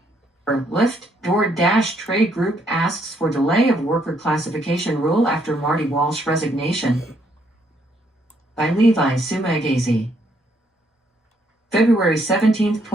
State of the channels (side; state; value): both; normal; correlation 0.71